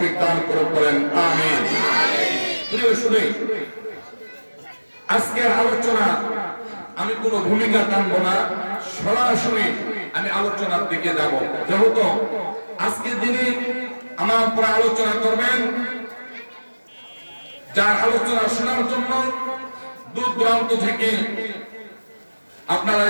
দান করুন, বলেন আমিন। প্রিয় শুধু আজকের আলোচনা আমি কোনো ভূমিকা টানবো না, সরাসরি আমি আলোচনার দিকে যাব। যেহেতু আজকে যিনি আমার উপরে আলোচনা করবেন, যার আলোচনা শোনার জন্য দূর দূরান্ত থেকে আপনারা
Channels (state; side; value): inverted; both; correlation -1.00